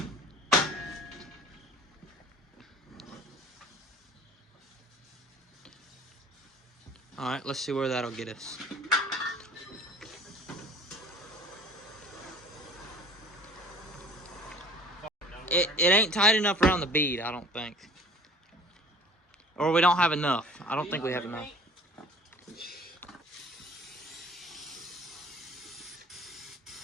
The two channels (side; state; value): both; normal; correlation 0.47